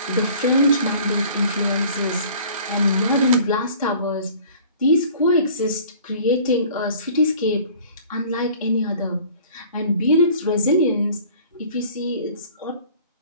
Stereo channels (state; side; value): inverted; both; correlation -0.49